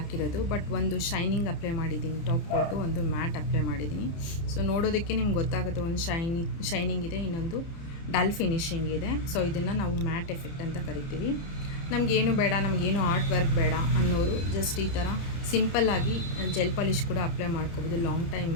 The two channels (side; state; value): right; late; 30 ms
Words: ಬಟ್ ಒಂದು ಶೈನಿಂಗ್ ಅಪ್ಲೈ ಮಾಡಿದ್ದೀನಿ, ಟಾಪ್ ಕೊಟ್ಟು ಒಂದು ಮ್ಯಾಟ್ ಅಪ್ಲೈ ಮಾಡಿದ್ದೀನಿ. ಸೊ ನೋಡೋದಕ್ಕೆ ನಿಮ್ಗೆ ಗೊತ್ತಾಗುತ್ತೆ, ಒಂದು ಶೈನಿಂಗ್ ಇದೆ, ಇನ್ನೊಂದು ಡಲ್ ಫಿನಿಶಿಂಗ್ ಇದೆ. ಸೊ ಇದನ್ನು ನಾವು ಮ್ಯಾಟ್ ಎಫೆಕ್ಟ್ ಅಂತ ಕರಿತೀವಿ. ನಮಗೇನು ಬೇಡ, ನಮಗೇನು ಆರ್ಟ್ ವರ್ಕ್ ಬೇಡ ಅನ್ನೋರು ಜಸ್ಟ್ ಈ ಥರ ಸಿಂಪಲ್ಲಾಗಿ ಜೆಲ್ ಪಾಲಿಷ್ ಕೂಡ ಅಪ್ಲೈ ಮಾಡ್ಕೋಬೋದು. ಲಾಂಗ್ ಟೈಮ್